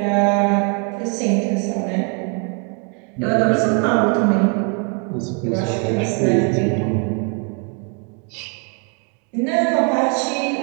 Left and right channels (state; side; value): quieter; left; 37.8 dB